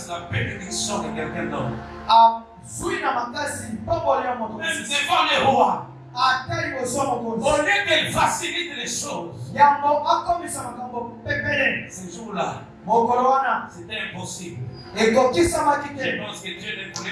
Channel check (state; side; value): identical; both; correlation 1.00